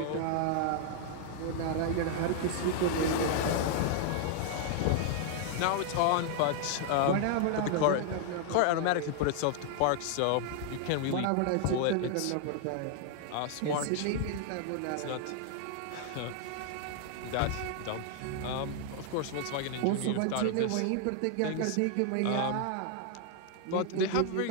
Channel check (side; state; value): both; different; correlation 0.00